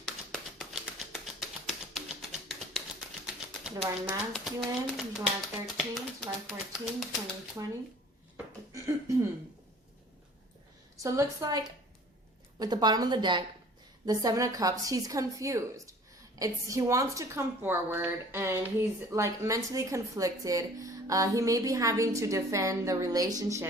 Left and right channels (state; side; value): normal; both; correlation 0.49